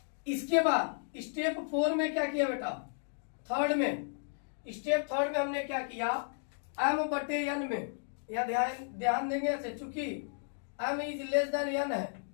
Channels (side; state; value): right; silent; digital silence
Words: इसके बाद स्टेप 4 में क्या किया बेटा? स्टेप थर्ड में हमने क्या किया, m/n में या ध्यान देंगे ऐसे, चूंकि m is less than n है